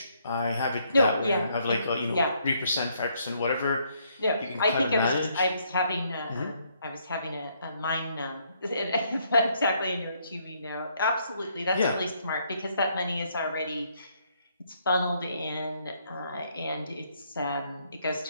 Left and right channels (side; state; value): both; inverted; correlation -0.71